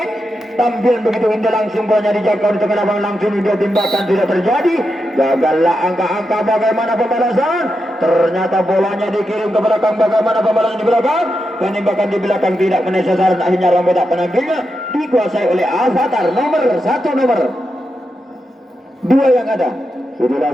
tampil begitu indah, langsung bolanya dijangkau di tengah lapangan, langsung dia timbakan, tidak terjadi. Gagallah angka-angka, bagaimana pembalasan, ternyata bolanya dikirim ke belakang. Bagaimana pembalasan di belakang, penembakan di belakang tidak menaik sasaran, akhirnya ruang petak penambilnya dikuasai oleh avatar nomor 2 yang ada. Inilah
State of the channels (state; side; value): normal; both; correlation 0.86